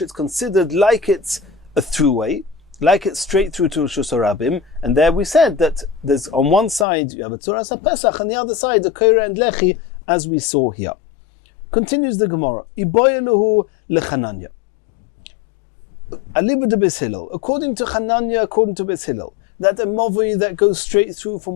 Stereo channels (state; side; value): drops out; right; at 6.9 s